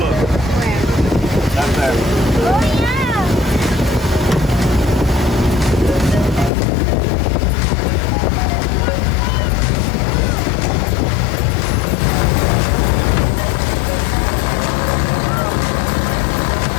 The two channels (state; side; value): drops out; right; at 6.5 s